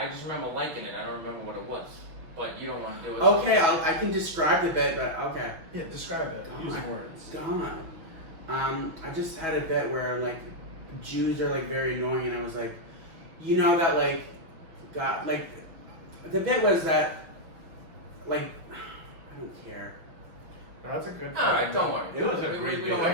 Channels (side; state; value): left; late; 6.1 ms